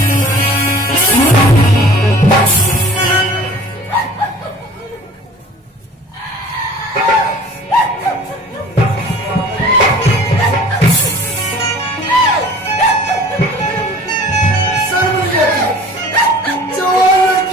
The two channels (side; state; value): both; normal; correlation 0.46